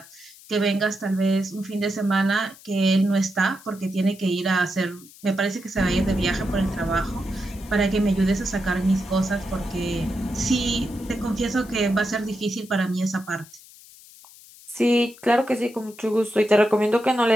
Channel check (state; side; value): noise; left; hiss, 22 dB below the sound